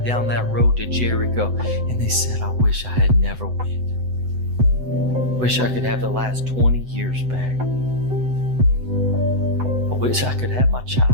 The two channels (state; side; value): late; left; 7.9 ms